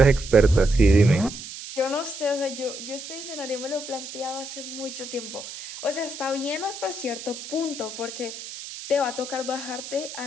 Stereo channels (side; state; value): right; noise; hiss, 11 dB below the sound